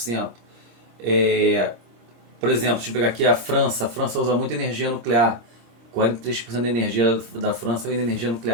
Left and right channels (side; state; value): left; late; 26 ms